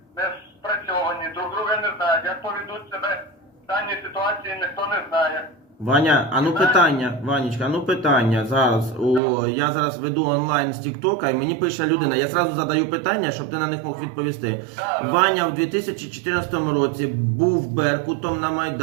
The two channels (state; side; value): drops out; left; at 9.2 s